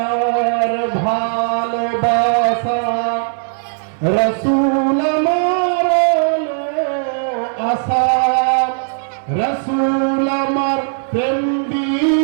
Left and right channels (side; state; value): left; silent; 61 dB below the other